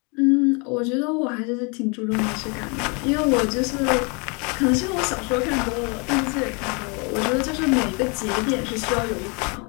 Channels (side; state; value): right; quieter; 32.7 dB